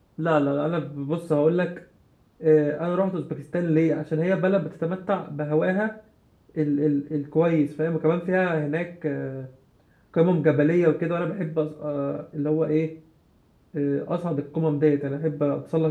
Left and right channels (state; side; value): identical; both; correlation 1.00